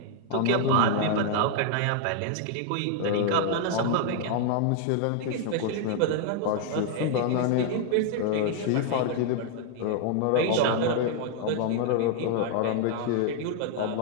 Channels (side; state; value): both; different; correlation 0.00